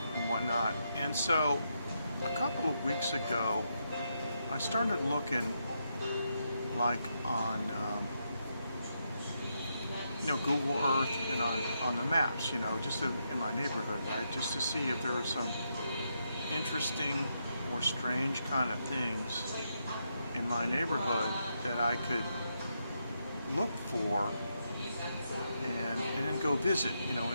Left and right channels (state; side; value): inverted; both; correlation -0.81